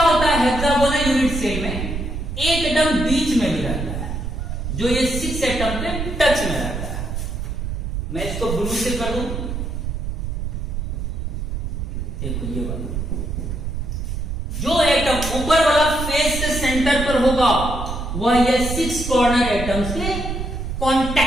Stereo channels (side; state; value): right; noise; rumble, 4 dB below the sound